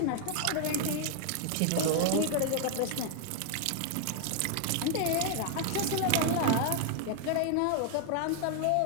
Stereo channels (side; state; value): both; different; correlation 0.00